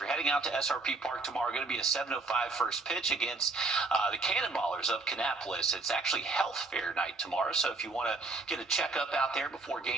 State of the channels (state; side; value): quieter; left; 3.6 dB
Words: heading out to SRP Park tomorrow, going to be a 7:05 first pitch against the Cannonballers of Kannapolis. It's actually health fair night tomorrow. So if you want to get a checkup out there before